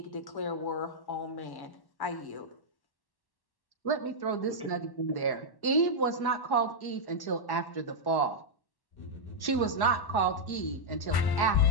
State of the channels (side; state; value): right; late; 1.1 ms